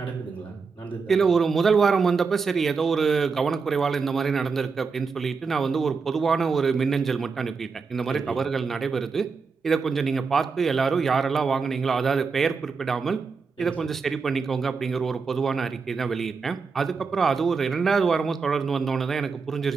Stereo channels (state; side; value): quieter; left; 5.0 dB